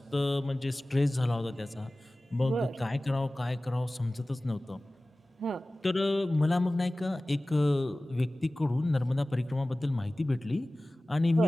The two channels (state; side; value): normal; both; correlation 0.97